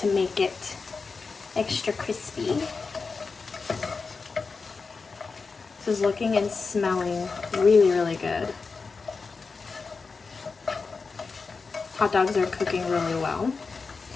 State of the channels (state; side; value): quieter; right; 4.6 dB